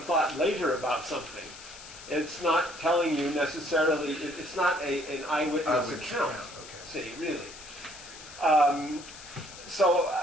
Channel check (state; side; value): noise; left; hiss, 16 dB below the sound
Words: thought later about something. It's not telling you necessarily, it's not an eyewitness account, see, really. But